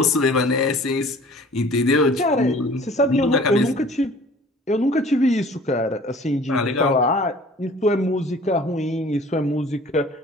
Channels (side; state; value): both; normal; correlation 0.49